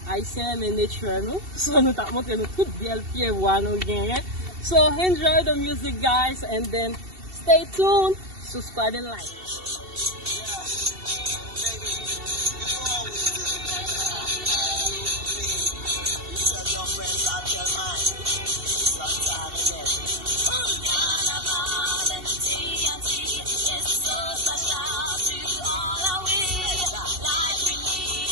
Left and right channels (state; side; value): late; left; 2.7 ms